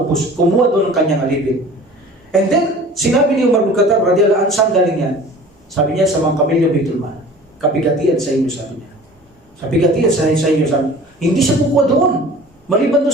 kumuha doon ng kanyang alipin. And then, sinabi ni Umar bin Khattab radhiyallahu anhu, saan galing yan? Sabi niya, sa mga kamelyo Baitul Mal. Kabigatian sa inyo, sabi niya. Kabigatian sa inyo, sabi niya. Hindi siya kukuha doon. Maliban doon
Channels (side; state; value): both; normal; correlation 0.44